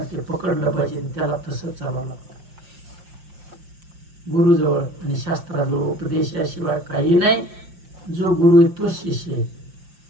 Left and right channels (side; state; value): left; late; 5.7 ms